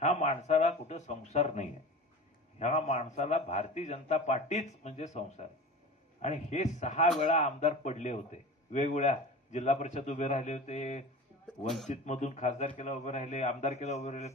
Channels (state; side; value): normal; both; correlation 0.34